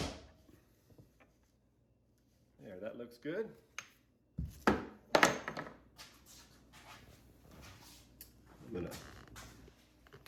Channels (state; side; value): identical; both; correlation 1.00